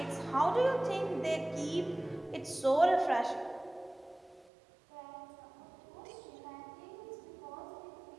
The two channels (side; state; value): left; drops out; at 4.5 s